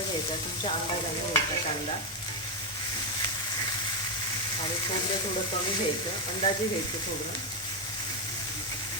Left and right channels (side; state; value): both; normal; correlation 0.05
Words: तुमच्या अंदाजाने घ्यायचा कांदा. आणि खोबरं थोडं कमी घ्यायचं, अंदाजे घ्यायचं खोबरं.